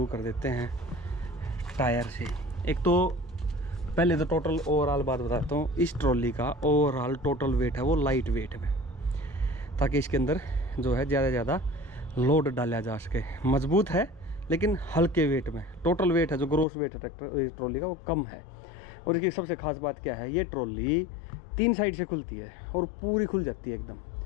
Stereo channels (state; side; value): drops out; right; at 16.7 s